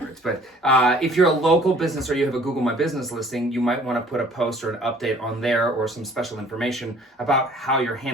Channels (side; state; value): both; normal; correlation 0.54